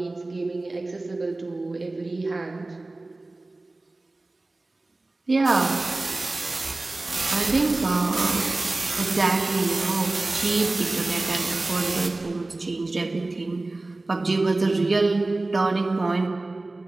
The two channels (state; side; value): quieter; left; 3.0 dB